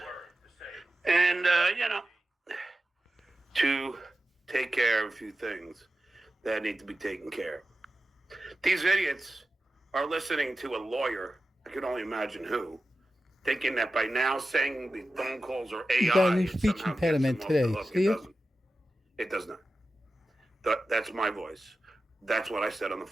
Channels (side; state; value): both; normal; correlation 0.93